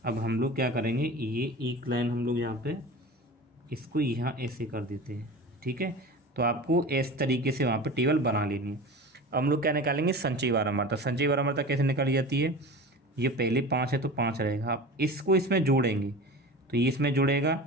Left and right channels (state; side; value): normal; both; correlation 0.34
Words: अब हम लोग क्या करेंगे, ये एक लाइन हम लोग यहाँ पे इसको यहाँ ऐसे कर देते हैं, ठीक है। तो आपको इस तरीके से वहाँ पे टेबल बना लेनी है। अब हम लोग क्या निकालेंगे, संचयी बारंबारता। संचयी बारंबारता कैसे निकाली जाती है, ये पहले 5 है तो 5 रहेगा, आप इसको इसमें जोड़ेंगे तो ये इसमें जुड़ेगा